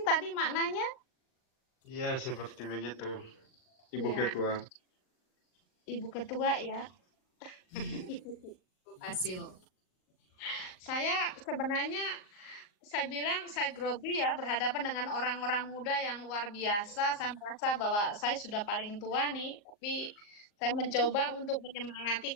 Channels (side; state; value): right; late; 39 ms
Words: tadi maknanya? Iya, seperti begitu, Ibu Ya. Ketua. Ibu Ketua ya. Saya bilang saya grogi ya berhadapan dengan orang-orang muda yang luar biasa. Saya merasa bahwa saya sudah paling tua nih, tapi saya mencoba untuk